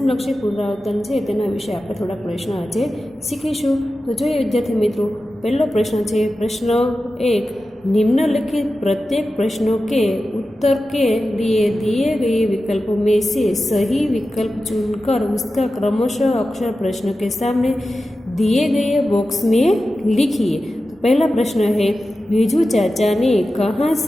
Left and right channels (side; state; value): both; normal; correlation 0.93